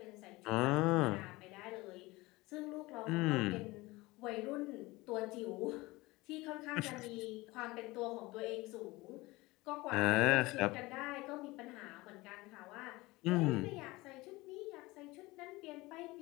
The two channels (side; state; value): right; quieter; 21.3 dB